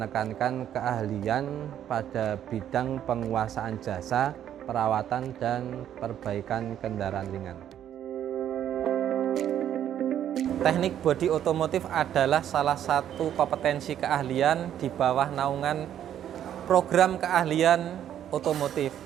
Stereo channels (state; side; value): quieter; left; 10.4 dB